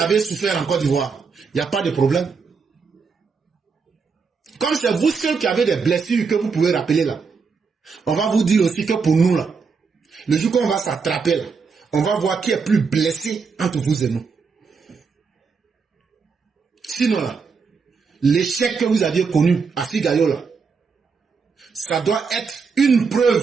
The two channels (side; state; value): left; quieter; 5.3 dB